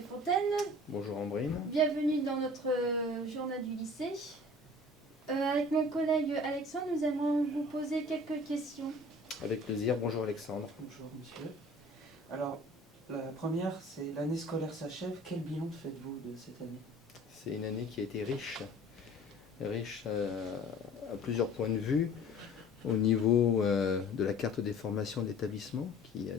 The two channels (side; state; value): both; normal; correlation 0.47